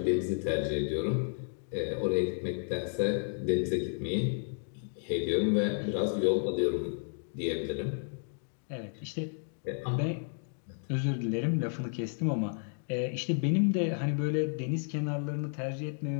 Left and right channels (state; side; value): silent; right; 56 dB below the other